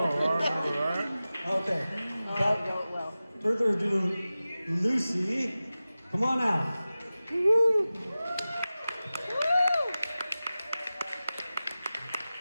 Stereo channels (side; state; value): both; inverted; correlation -0.95